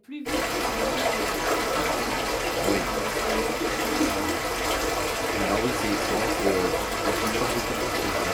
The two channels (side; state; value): both; identical; correlation 1.00